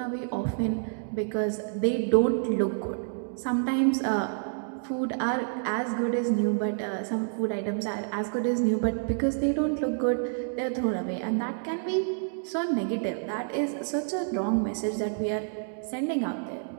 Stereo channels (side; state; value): left; silent; digital silence